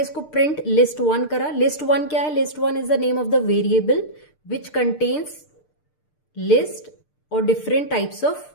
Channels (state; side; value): late; right; 6.7 ms